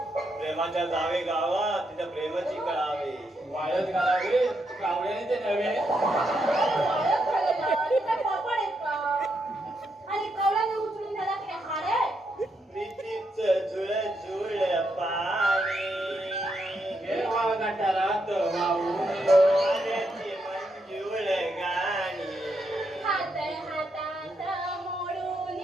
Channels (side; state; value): both; normal; correlation 0.80